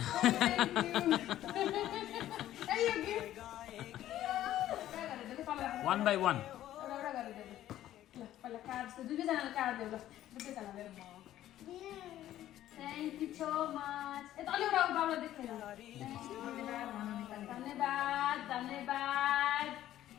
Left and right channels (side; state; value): right; quieter; 13.0 dB